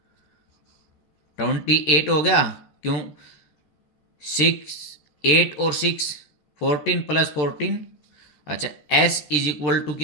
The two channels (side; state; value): right; late; 13 ms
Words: 28 हो गया, क्यों 6 8 और 6 14 प्लस 14। अच्छा s इज इक्वल टू